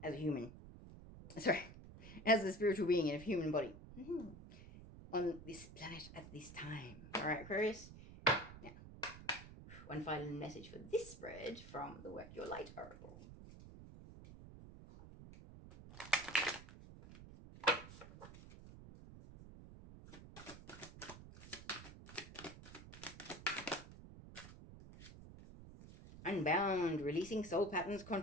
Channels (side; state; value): right; noise; rumble, 15 dB below the sound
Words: as a human. Sorry, as a spiritual being in a human body. On this planet at this time. Alright, Aquarius? Now, one final message for this spread from the Work Your Light oracle. Unbound, releasing soul patterns,